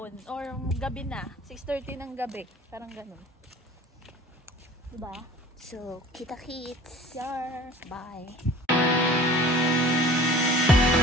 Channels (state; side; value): normal; both; correlation 0.45